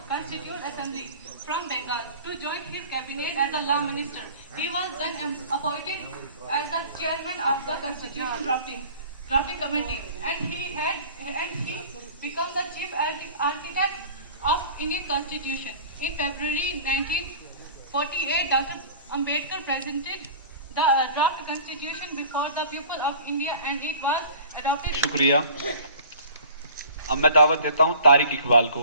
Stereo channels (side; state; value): both; inverted; correlation -0.43